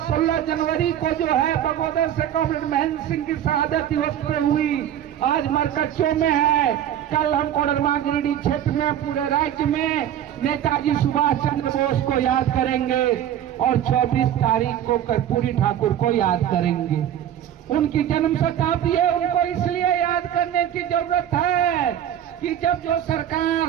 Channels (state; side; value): quieter; left; 10.7 dB